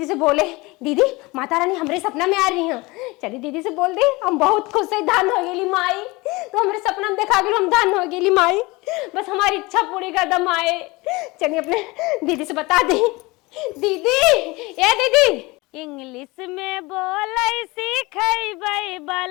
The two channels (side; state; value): right; quieter; 23.3 dB